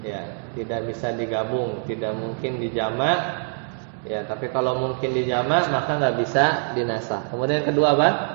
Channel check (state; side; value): silent; left; 63 dB below the other